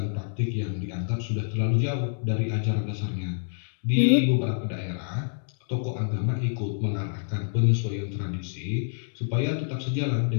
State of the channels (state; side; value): silent; right; digital silence